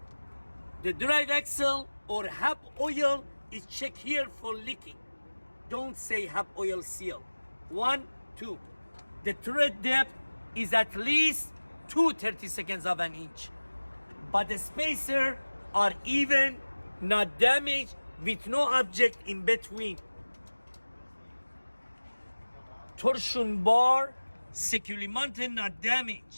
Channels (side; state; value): both; inverted; correlation -1.00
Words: The drive axle or hub oil is checked here for leaking. Don't say hub oil seal. 1, 2. The thread depth is at least 2/32 of an inch. But the spacer are even, not damaged, with no object in between. Torsion bar, securely mounted, not